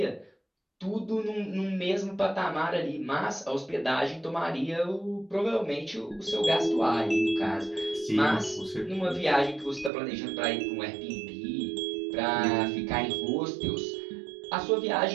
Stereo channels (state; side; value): drops out; left; at 9.9 s